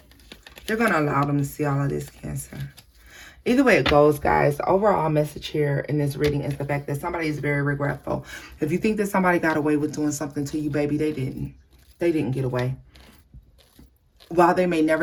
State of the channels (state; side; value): identical; both; correlation 1.00